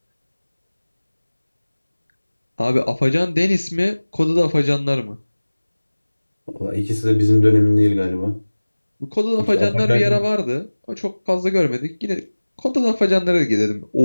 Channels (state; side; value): inverted; both; correlation -1.00